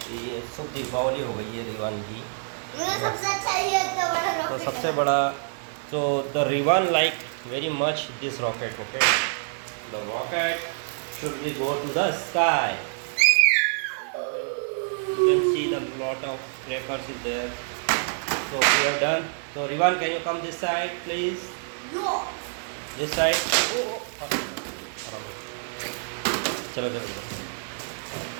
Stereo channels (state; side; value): silent; left; digital silence